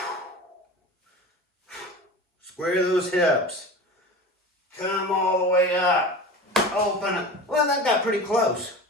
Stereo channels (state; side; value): normal; both; correlation 0.34